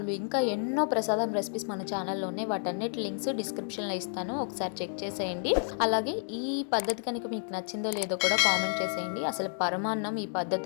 ఇంకా ఎన్నో ప్రసాదం రెసిపీస్ మన ఛానల్లో ఉన్నాయి. వాటన్నిటి లింక్స్ డిస్క్రిప్షన్లో ఇస్తాను, ఒకసారి చెక్ చేసేయండి. అలాగే ఈ పద్ధతి కనుక మీకు నచ్చిందో లేదో కూడా కామెంట్ చేసేయండి. అసలు పరమాన్నం ఈ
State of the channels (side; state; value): right; silent; digital silence